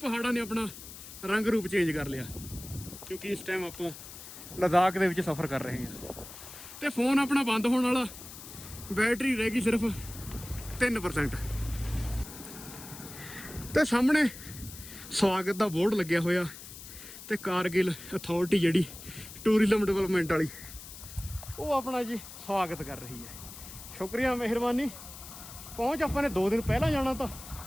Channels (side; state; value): left; noise; hiss, 14 dB below the sound